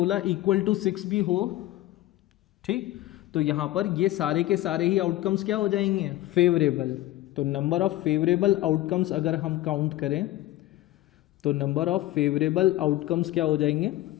इक्वल टू 6 भी हो, ठीक, तो यहां पर ये सारे के सारे ही आउटकम्स क्या हो जाएंगे, फेवरेबल। तो नंबर ऑफ फेवरेबल आउटकम्स अगर हम काउंट करें तो नंबर ऑफ फेवरेबल आउटकम्स क्या हो जाएंगे,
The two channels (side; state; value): right; quieter; 15.8 dB